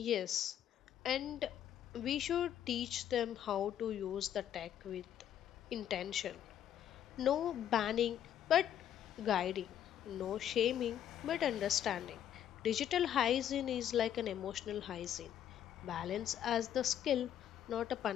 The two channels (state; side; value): quieter; right; 10.2 dB